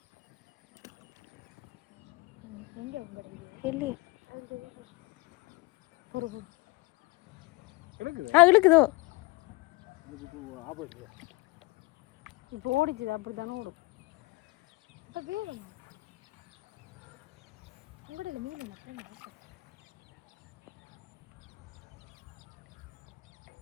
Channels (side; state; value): right; quieter; 23.5 dB